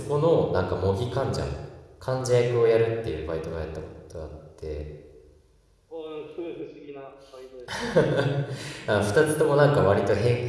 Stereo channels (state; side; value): identical; both; correlation 1.00